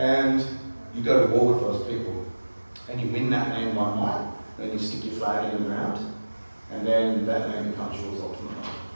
you go to war with those people. And you win that land by might, then you stick your flag in the ground, and then that land becomes yours ultimately.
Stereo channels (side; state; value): both; inverted; correlation -1.00